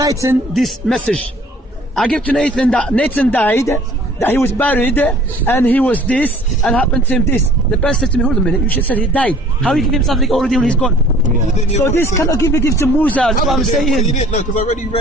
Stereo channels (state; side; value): normal; both; correlation 0.52